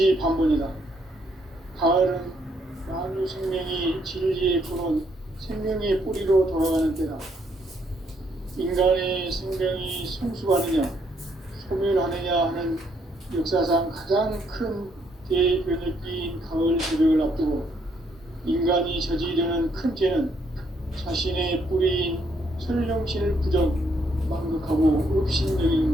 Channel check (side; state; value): both; normal; correlation 0.72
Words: 가을은 만유 생명이 진리의 근원, 생명의 뿌리로 돌아가는 때다. 인간의 생명이 성숙하느냐, 소멸하느냐 하는 역사상 가장 큰 대변혁기인 가을 새벽을 앞두고 인간이 저지르는 큰 죄는 자신의 뿌리인 설령신을 부정, 망극하고